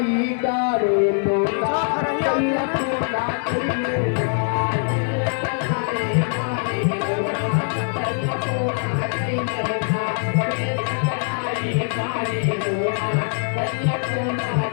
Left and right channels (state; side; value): silent; right; 56 dB below the other